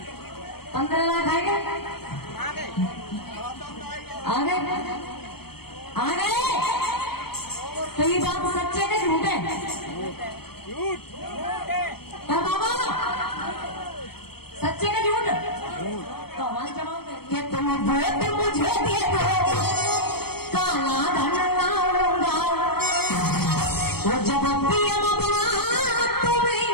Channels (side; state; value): right; late; 0.96 ms